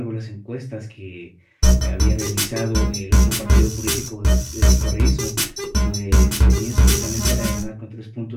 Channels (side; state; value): both; identical; correlation 1.00